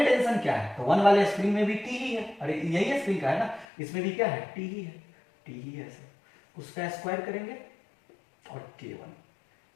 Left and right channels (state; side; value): drops out; right; at 3.7 s